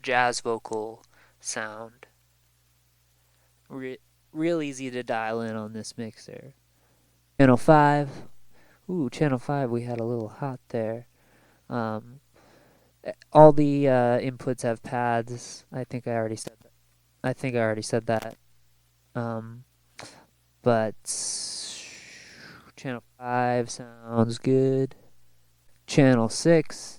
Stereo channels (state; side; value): identical; both; correlation 1.00